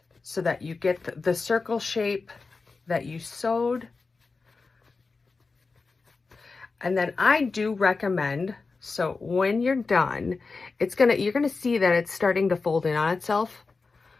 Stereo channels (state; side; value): quieter; right; 4.2 dB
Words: so that you get the circle shape that you sewed. And then I do recommend, so when you're done, you're gonna see that it's starting to fold in on itself.